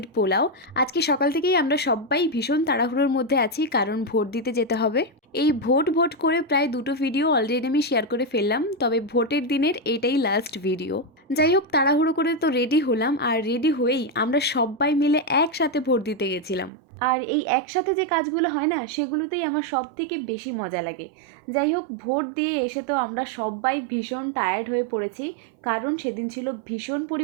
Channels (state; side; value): drops out; left; at 16.7 s